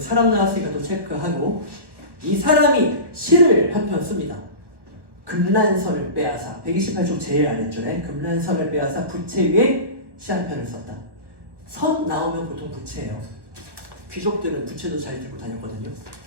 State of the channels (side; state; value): left; late; 1.2 ms